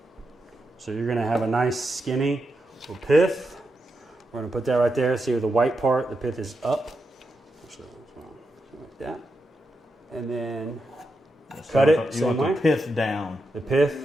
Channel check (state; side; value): normal; both; correlation 0.86